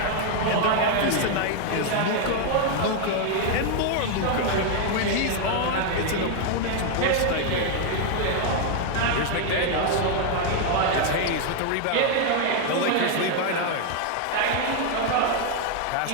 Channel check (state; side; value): different; both; correlation 0.01